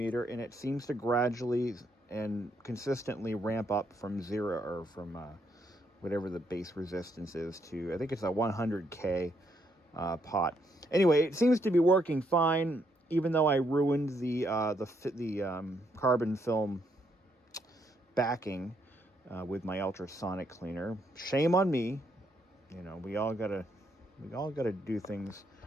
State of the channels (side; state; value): both; normal; correlation 0.75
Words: and it seems to gradually and consistently ramp up from zero, or from whatever the base resistance is, to I think it's a 100K pot. Anyway, it seems to be working fine, even though I ruined the carbon film backing with my ultrasonic cleaner. Shame on me. You know, we all gotta do things